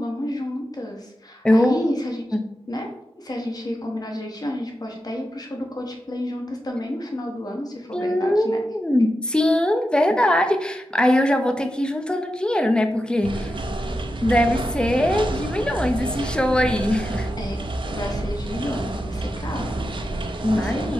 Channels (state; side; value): normal; both; correlation 0.89